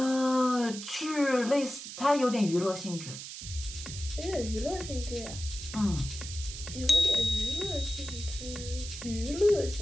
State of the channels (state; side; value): noise; right; hiss, 10 dB below the sound